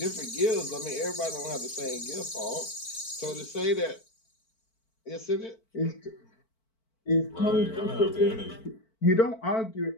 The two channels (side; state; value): right; late; 4.5 ms